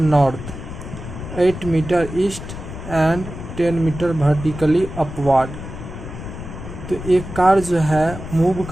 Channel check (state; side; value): noise; left; rumble, 10 dB below the sound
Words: 8 metre east and 10 metre vertically upward. तो एक कार जो है मूव